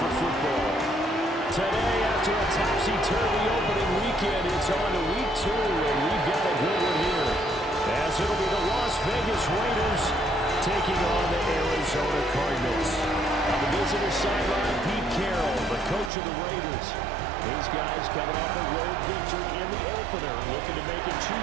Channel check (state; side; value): drops out; left; at 16.1 s